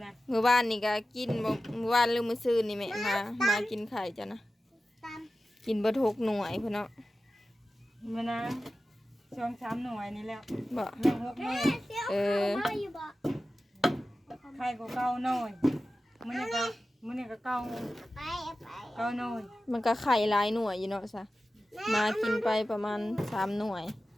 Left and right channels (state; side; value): normal; both; correlation 0.94